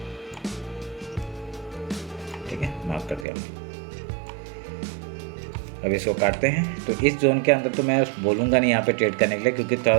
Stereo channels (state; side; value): drops out; left; at 3.2 s